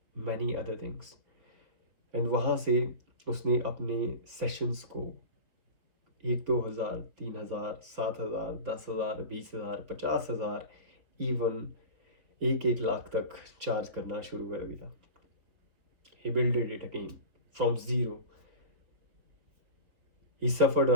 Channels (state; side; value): late; left; 4.1 ms